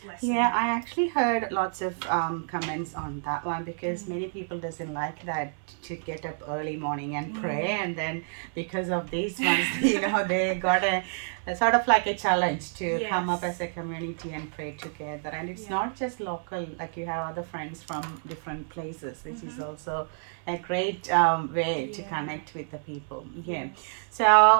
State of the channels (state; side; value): silent; left; 59 dB below the other